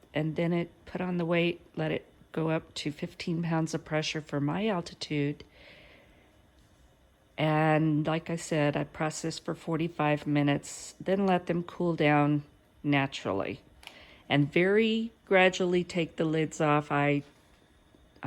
and then it put on the weight, let it go up to 15 pounds of pressure for my altitude. And like I said, I processed for 45 minutes, then let them cool down naturally. And very gradually take the lids off. I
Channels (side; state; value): both; identical; correlation 1.00